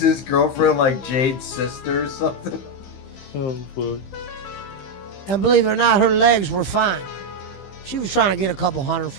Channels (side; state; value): right; late; 15 ms